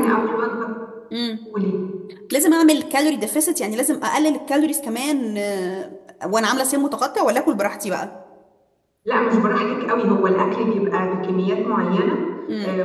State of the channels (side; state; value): both; identical; correlation 1.00